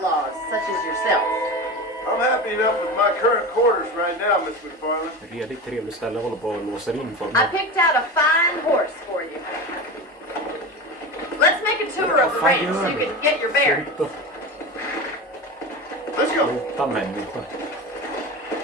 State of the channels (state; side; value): normal; both; correlation 0.26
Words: such as yourself. I'm happy enough with my current quarters right now, Miss McFarlane. Redigt trevligt ställe, håller på och låser in för I mig. picked out a fine horse for you. Let's make a tour of the range so you can get your bearings. Sluta. Let's go. Sluta människa.